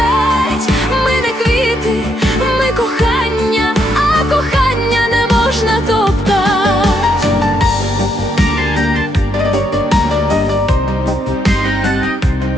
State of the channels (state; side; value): normal; both; correlation 0.76